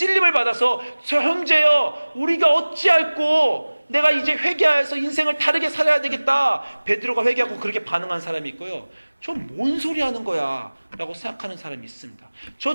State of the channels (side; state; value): both; inverted; correlation -1.00